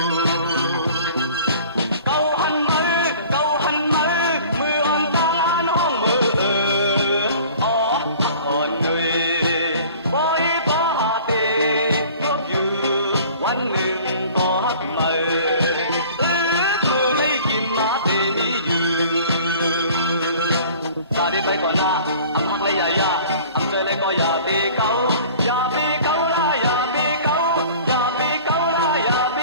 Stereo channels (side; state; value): both; inverted; correlation -0.47